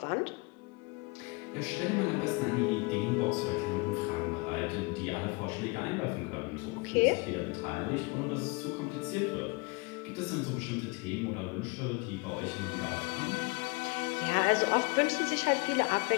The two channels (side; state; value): right; quieter; 28.2 dB